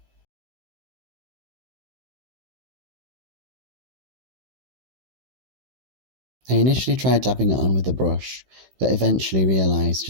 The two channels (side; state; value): left; late; 16 ms